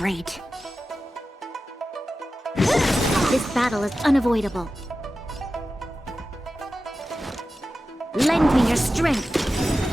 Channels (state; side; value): normal; both; correlation 0.94